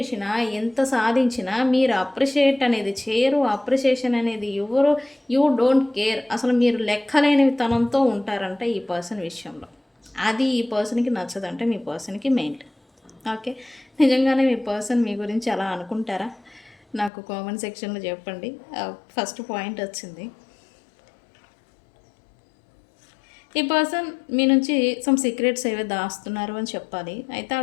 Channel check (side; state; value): right; drops out; at 17.1 s